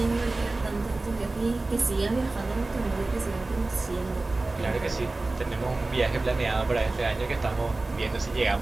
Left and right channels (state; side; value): quieter; left; 3.2 dB